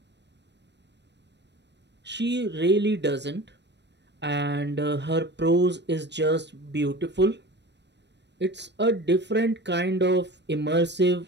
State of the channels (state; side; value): late; left; 0.50 ms